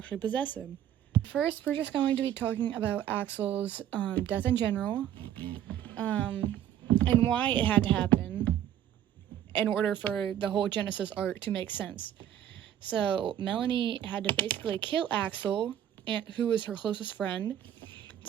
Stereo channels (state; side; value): quieter; left; 10.8 dB